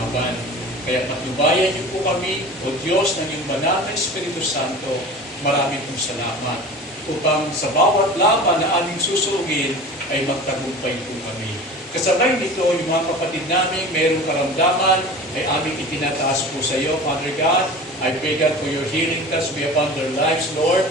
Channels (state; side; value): normal; both; correlation 0.37